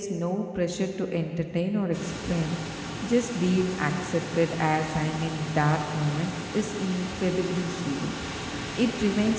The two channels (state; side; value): identical; both; correlation 1.00